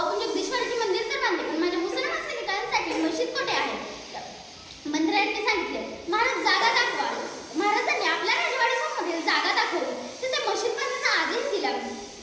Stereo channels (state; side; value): identical; both; correlation 1.00